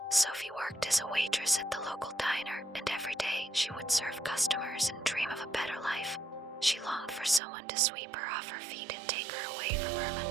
Sophie worked as a waitress at the local diner, and every day she would serve customers and dream of a better life. She longed for someone to sweep her off her feet and take her away from her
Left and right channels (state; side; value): drops out; left; at 7.4 s